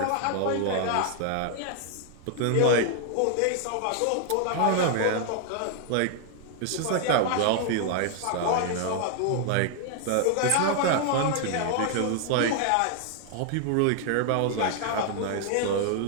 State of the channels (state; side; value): different; both; correlation 0.00